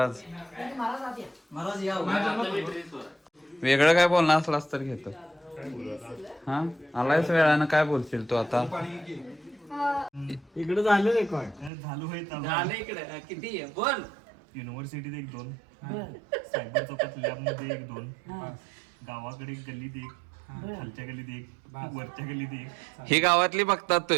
वेगळं काय बोलणार असलास तर घेतो हा आलायच वेळानं काय बोलशील तू आता इकडे झालं रेकॉर्ड झालं इकडे किती आहे बोल युनिव्हर्सिटीत 1-2 सायबर चौकात लॅबमध्ये 1-2 गावाकडे एक गल्लीत 1 खालच्या गल्लीत 1 वरच्या गल्लीत 1 ही गावातली बघतात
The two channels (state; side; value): drops out; left; at 11.7 s